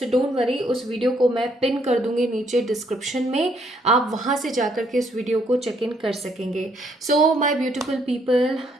डोंट वरी, उस वीडियो को मैं पिन कर दूंगी नीचे डिस्क्रिप्शन में। आप वहाँ से जाकर के इस वीडियो को चेक इन कर सकेंगे। So my beautiful people,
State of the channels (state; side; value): normal; both; correlation 0.70